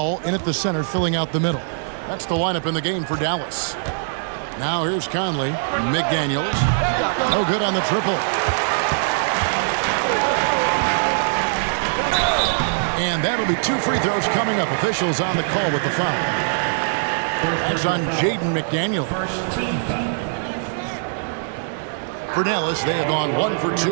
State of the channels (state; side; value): silent; left; digital silence